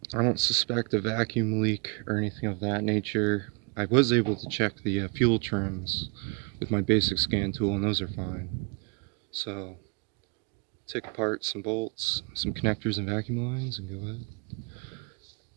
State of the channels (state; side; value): quieter; left; 33.3 dB